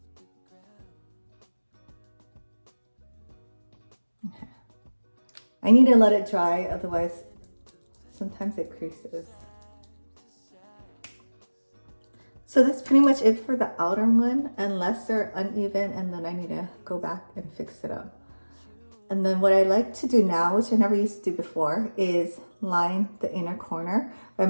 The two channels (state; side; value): inverted; both; correlation -1.00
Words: Okay. I need to let it dry, otherwise sometimes it creases. So that's pretty much it for the outer one, unless they're uneven and then I need to go back and fix it up. And then what I like to do now, which I never used to do before, is line the inner corner. But I'm